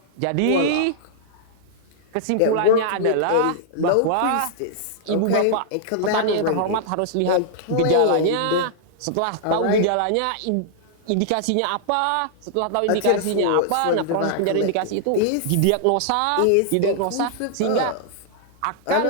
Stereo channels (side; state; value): both; different; correlation -0.01